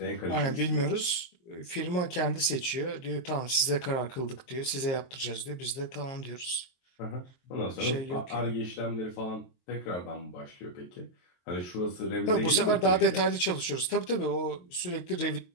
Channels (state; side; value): late; right; 23 ms